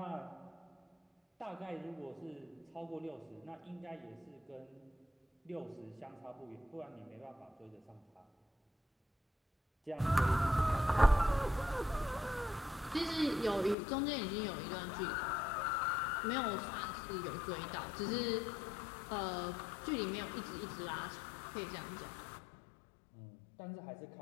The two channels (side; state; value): right; drops out; at 13.8 s